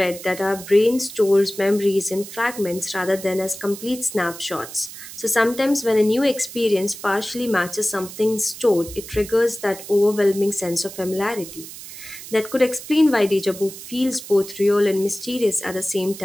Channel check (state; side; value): noise; right; hiss, 13 dB below the sound